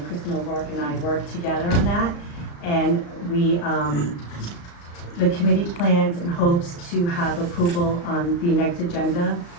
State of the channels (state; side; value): late; right; 35 ms